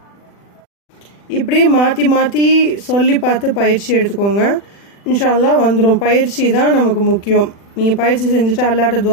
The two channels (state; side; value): late; right; 40 ms